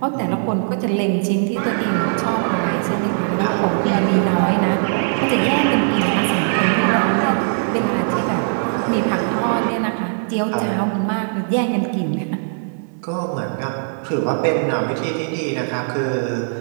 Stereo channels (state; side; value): silent; left; digital silence